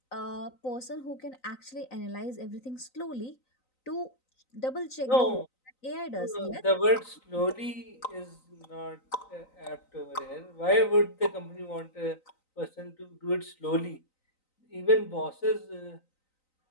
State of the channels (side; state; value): right; late; 3.9 ms